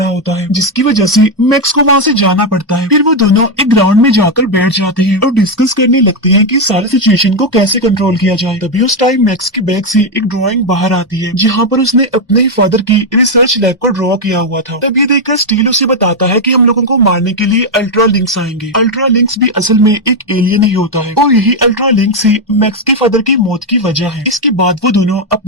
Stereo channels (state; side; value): normal; both; correlation 0.03